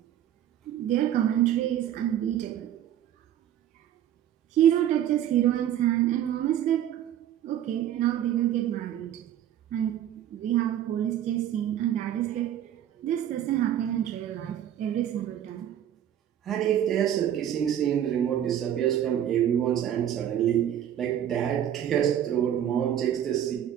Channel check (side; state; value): left; quieter; 10.7 dB